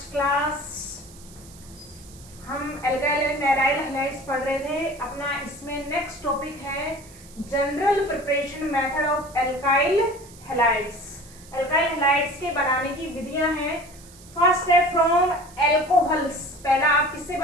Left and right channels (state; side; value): noise; right; hiss, 22 dB below the sound